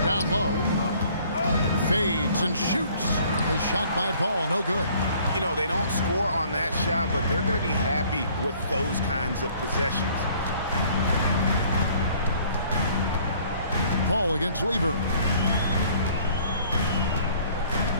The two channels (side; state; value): both; inverted; correlation -0.56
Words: low. Fades and shoots. A shot by Paul, no good. You know, they don't score on that shot, but they're going to be happy with those kinds of possessions. Paul against Lever.